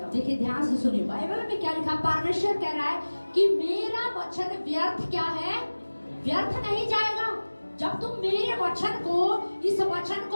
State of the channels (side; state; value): both; inverted; correlation -1.00